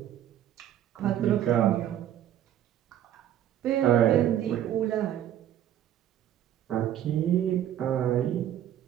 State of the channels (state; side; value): quieter; left; 11.2 dB